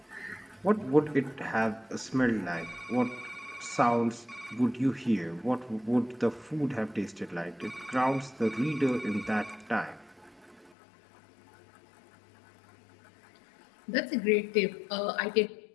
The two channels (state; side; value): drops out; right; at 10.8 s